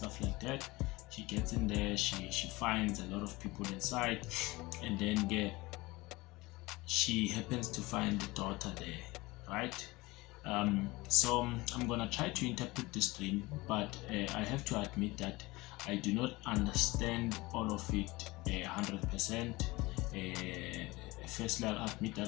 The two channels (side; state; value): right; quieter; 21.7 dB